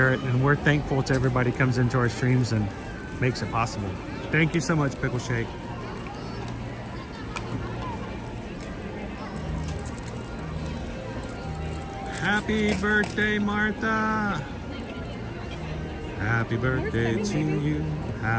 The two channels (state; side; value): identical; both; correlation 1.00